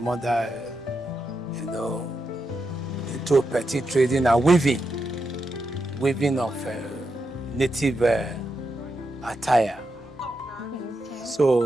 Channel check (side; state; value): both; normal; correlation 0.85